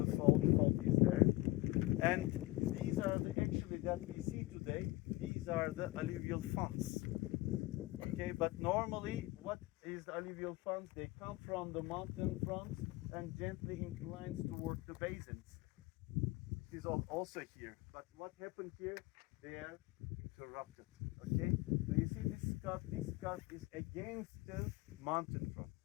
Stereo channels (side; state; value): right; quieter; 19.8 dB